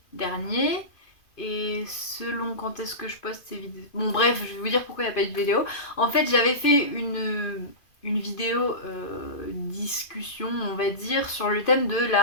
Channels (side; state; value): right; late; 2.5 ms